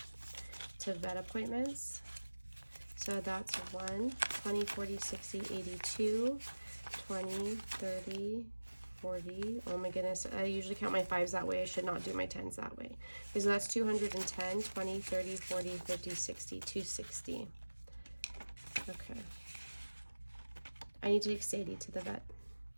to vet appointments. So that's 1, 20, 40, 60, 82, 20, 30, 40. Oh my goodness, I usually count my 5s that way. I should not do my 10s that way. Okay, so that's 210, 20, 30, 40, 50, 60, 260. Okay. I need to take Sadie to the vet.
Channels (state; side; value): inverted; both; correlation -1.00